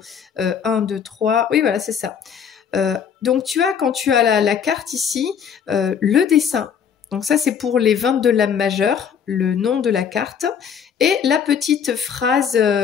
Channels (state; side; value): quieter; right; 7.5 dB